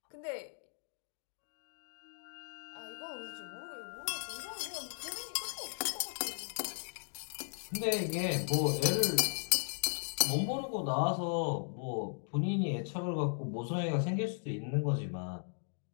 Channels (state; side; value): silent; right; digital silence